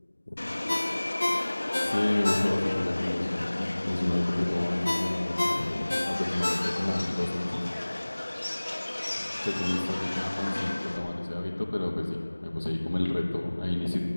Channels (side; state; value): both; inverted; correlation -1.00